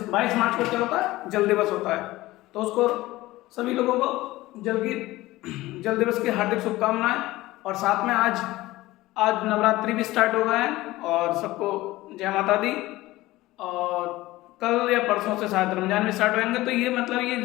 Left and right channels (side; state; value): right; quieter; 18.1 dB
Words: 22 मार्च को क्या होता है? जल दिवस होता है। तो उसको सभी लोगों को जल दिवस की हार्दिक शुभकामनाएं। और साथ में आज नवरात्रि भी स्टार्ट हो गए हैं और सबको जय माता दी। और कल या परसों से शायद रमजान भी स्टार्ट होंगे। तो ये मतलब ये